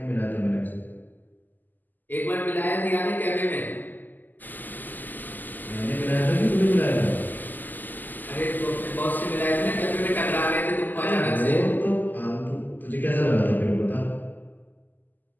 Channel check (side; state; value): right; late; 0.086 ms